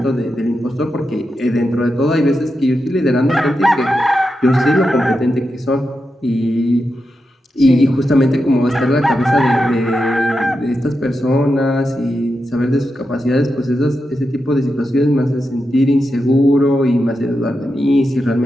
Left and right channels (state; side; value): normal; both; correlation 0.88